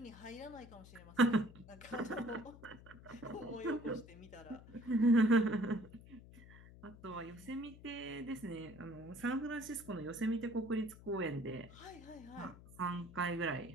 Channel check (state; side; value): noise; left; hum, 18 dB below the sound